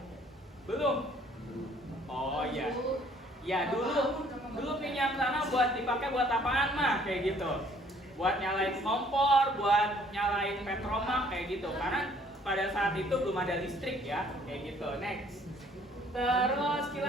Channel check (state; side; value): normal; both; correlation 0.60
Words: Belum. Oh iya. Ya dulu minyak tanah dipakai buat apaan mah? Kayak gitu. Buat nyalain kompor, buat nyalain petromak kayak gitu. Karena pada saat itu belum ada listrik ya, kayak gitu. Next. Terus